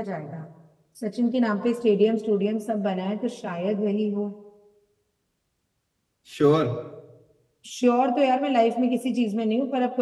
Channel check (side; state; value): both; identical; correlation 1.00